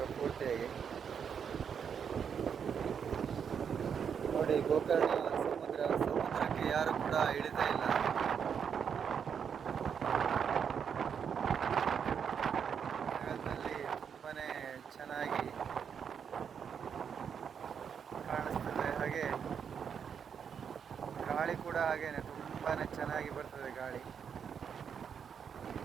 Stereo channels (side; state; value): left; quieter; 7.2 dB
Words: ಪೂರ್ತಿಯಾಗಿ. ನೋಡಿ, ಗೋಕರ್ಣ ಸಮುದ್ರಕ್ಕೆ ಯಾರು ಕೂಡ ಇಳಿತಾ ಇಲ್ಲ. ಮಳೆಗಾಲದಲ್ಲಿ ತುಂಬಾನೇ ಚೆನ್ನಾಗಿ ಕಾಣಿಸ್ತದೆ. ಹಾಗೆ ಗಾಳಿ ಕೂಡ ಹಾಗೇನೆ ತುಂಬಾನೇ ಚೆನ್ನಾಗಿ ಬರ್ತದೆ ಗಾಳಿ.